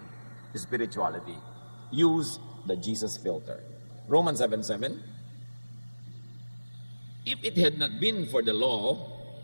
spirituality. Use the Jesus filter. Romans 7:7. If it had not been for the law,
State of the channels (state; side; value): inverted; both; correlation -1.00